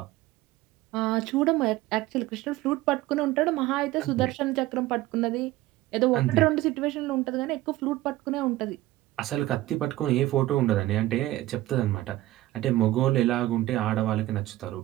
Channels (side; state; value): left; quieter; 16.6 dB